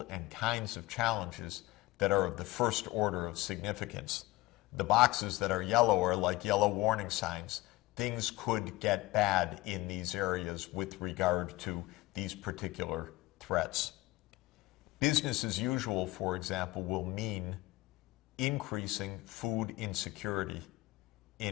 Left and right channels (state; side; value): quieter; right; 19.6 dB